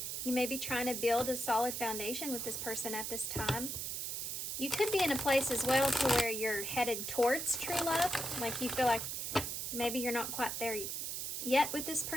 You may be trying to build a solid foundation with this person at this time. You could be in a place as well to where you're headed towards true love. Like you feel like maybe you're not quite there yet with this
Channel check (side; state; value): right; noise; hiss, 3 dB below the sound